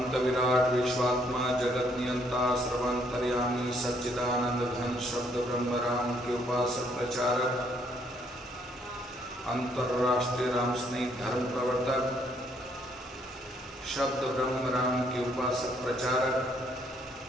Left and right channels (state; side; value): normal; both; correlation 0.68